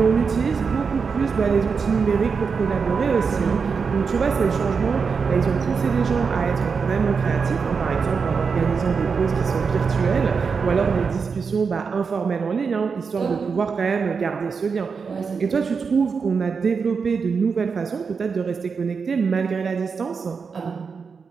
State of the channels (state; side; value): quieter; left; 5.5 dB